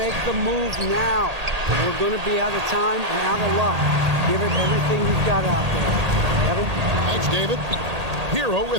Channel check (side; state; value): left; late; 1.8 ms